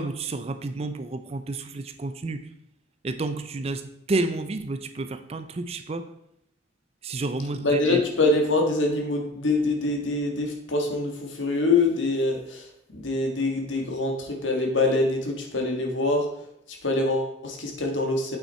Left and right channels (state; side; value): normal; both; correlation 0.38